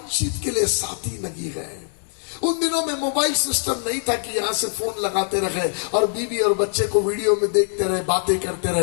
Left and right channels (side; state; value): right; silent; digital silence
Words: के लिए साथी नहीं है। उन दिनों में मोबाइल सिस्टम नहीं था कि यहां से फोन लगाते रहे और बीवी और बच्चे को वीडियो में देखते रहे, बातें करते